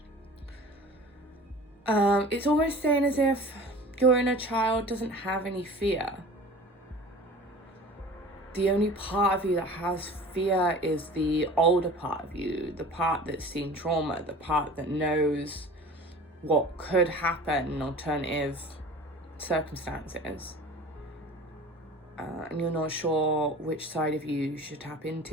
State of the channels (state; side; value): normal; both; correlation 0.41